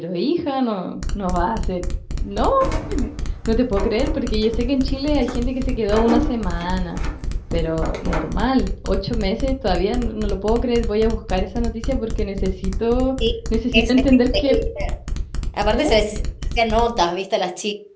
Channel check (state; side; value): identical; both; correlation 1.00